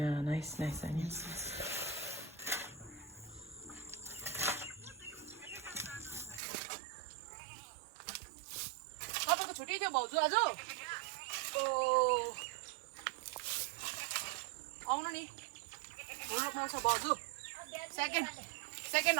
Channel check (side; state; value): left; drops out; at 6.4 s